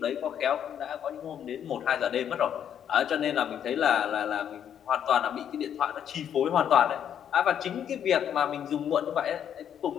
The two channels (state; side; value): quieter; right; 9.2 dB